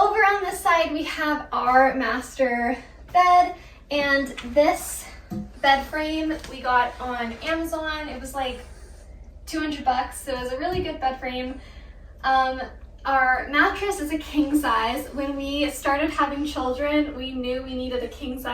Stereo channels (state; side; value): identical; both; correlation 1.00